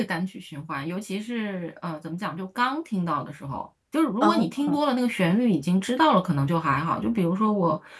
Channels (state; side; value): identical; both; correlation 1.00